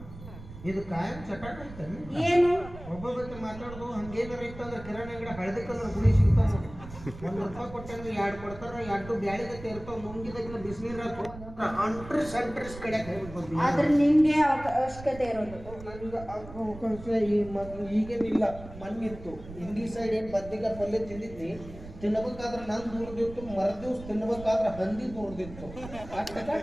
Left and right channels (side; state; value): right; noise; rumble, 15 dB below the sound